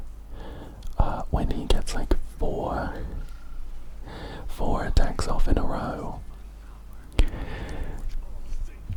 When he gets like four attacks off in a row.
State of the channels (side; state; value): both; identical; correlation 1.00